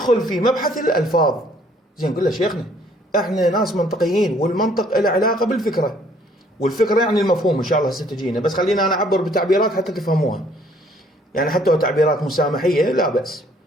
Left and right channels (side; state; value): both; normal; correlation 0.61